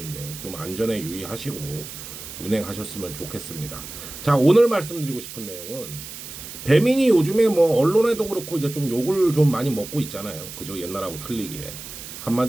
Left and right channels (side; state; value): right; noise; hiss, 12 dB below the sound